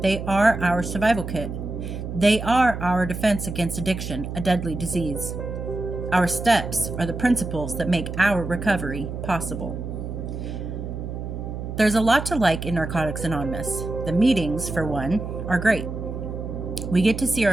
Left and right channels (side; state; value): right; noise; hum, 6 dB below the sound